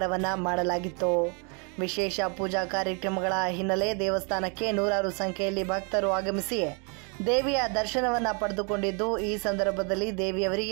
ಮಾಡಲಾಗಿತ್ತು. ವಿಶೇಷ ಪೂಜಾ ಕಾರ್ಯಕ್ರಮಗಳ ಹಿನ್ನೆಲೆ ದೇವಸ್ಥಾನಕ್ಕೆ ನೂರಾರು ಸಂಖ್ಯೆಯಲ್ಲಿ ಭಕ್ತರು ಆಗಮಿಸಿ ದೇವಿಯ ದರ್ಶನವನ್ನ ಪಡೆದುಕೊಂಡಿದ್ದು, ಈ ಸಂದರ್ಭದಲ್ಲಿ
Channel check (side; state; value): left; quieter; 35.5 dB